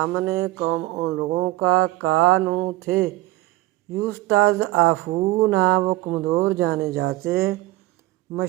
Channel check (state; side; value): quieter; left; 18.2 dB